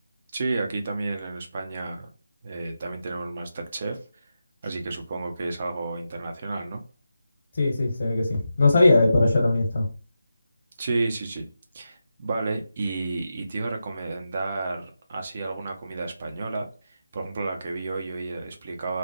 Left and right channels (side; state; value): both; inverted; correlation -0.88